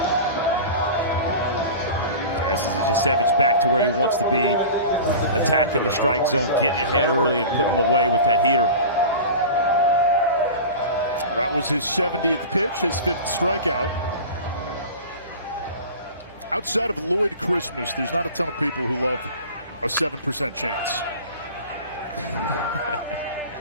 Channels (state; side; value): inverted; both; correlation -0.34